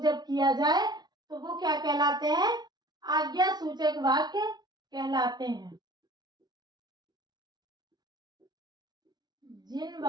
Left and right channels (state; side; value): late; left; 0.20 ms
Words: जब किया जाए तो वो क्या कहलाते हैं? आज्ञा सूचक वाक्य कहलाते हैं। जिन